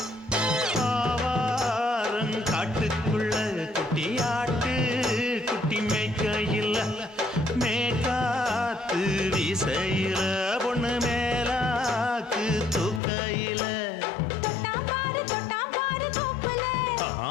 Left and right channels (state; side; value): drops out; right; at 13.0 s